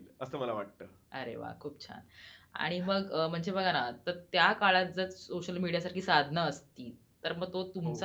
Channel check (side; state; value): both; identical; correlation 1.00